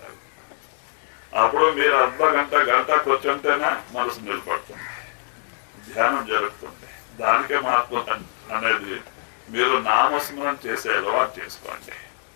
అప్పుడు మీరు గంట కూర్చుంటేనే మనసు నిలబడుతుంది, ధ్యానం జరుగుతుంది. దానికే మహత్వం అనేది మీరు నామస్మరణ చేసే అలవాటు చేసుకోండి.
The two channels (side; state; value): right; silent; digital silence